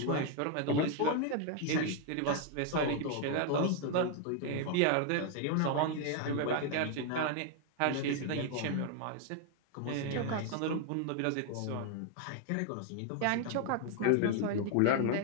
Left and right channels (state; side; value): different; both; correlation 0.00